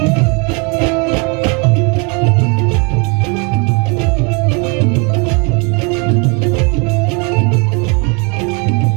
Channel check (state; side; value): quieter; left; 32.7 dB